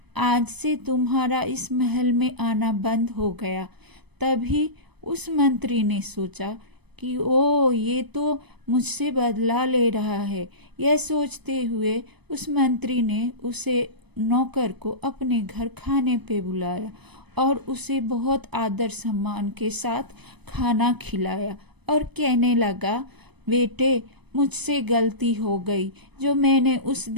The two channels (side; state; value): left; late; 0.99 ms